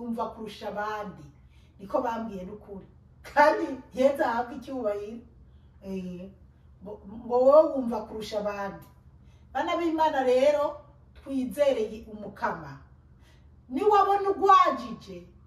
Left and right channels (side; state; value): both; identical; correlation 1.00